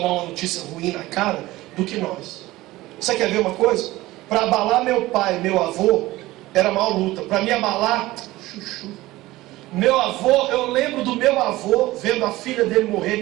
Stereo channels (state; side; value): quieter; left; 18.0 dB